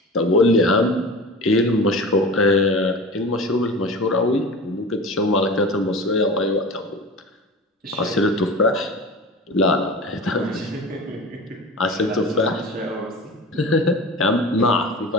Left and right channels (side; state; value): both; normal; correlation 0.34